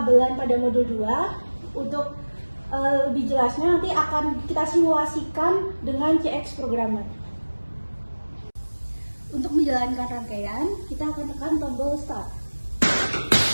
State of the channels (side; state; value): both; inverted; correlation -1.00